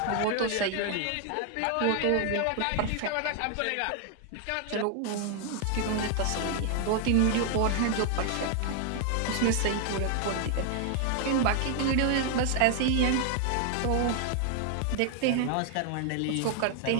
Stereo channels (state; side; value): different; both; correlation 0.00